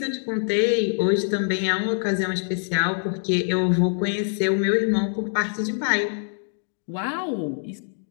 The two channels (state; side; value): silent; right; digital silence